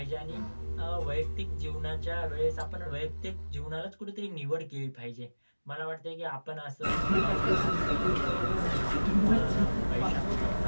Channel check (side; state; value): both; inverted; correlation -1.00